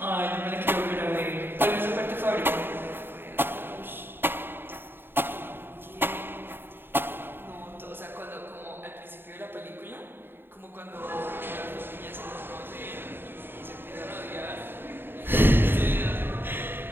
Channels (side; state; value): left; late; 0.10 ms